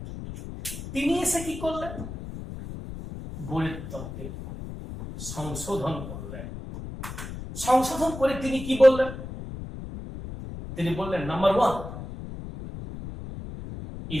তিনি এসে কি করলেন? বোরের তত্ত্বে সংশোধন করলেন। সংশোধন করে তিনি কি বললেন? তিনি বললেন, নাম্বার 1,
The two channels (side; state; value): left; noise; rumble, 9 dB below the sound